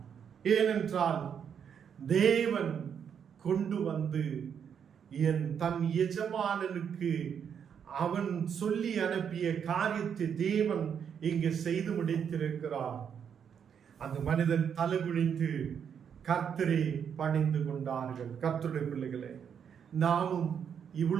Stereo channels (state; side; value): quieter; left; 7.7 dB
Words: ஏனென்றால் தேவன் கொண்டு வந்து தன் எஜமானனுக்கு அவன் சொல்லி அனுப்பிய காரியத்தை தேவன் இங்கு செய்து முடித்திருக்கிறார். அந்த மனிதன் தலை குனிந்து கர்த்தரை பணிந்து கொண்டார்கள். கர்த்தருடைய பிள்ளைகளே, நாமும்